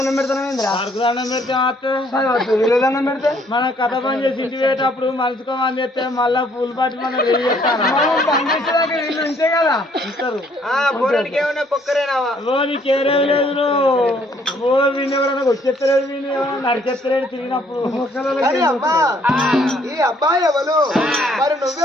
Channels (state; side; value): normal; both; correlation 0.65